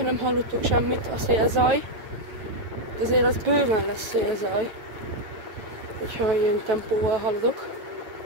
nem hallottok semmit, a szélzaj, azért az bőven lesz szélzaj, hogyha ilyen tempóval haladok,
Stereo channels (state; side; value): late; left; 8.8 ms